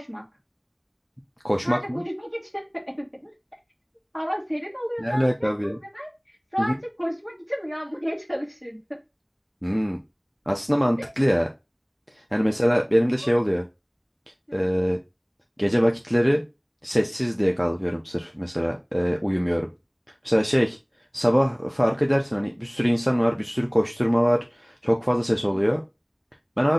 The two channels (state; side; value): identical; both; correlation 1.00